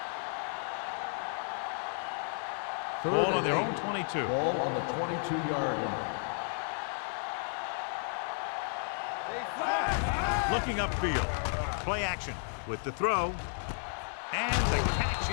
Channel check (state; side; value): silent; right; 56 dB below the other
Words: Ball on their own 22. Ball on the 22-yard line. Looking upfield. Play action with the throw. And the catch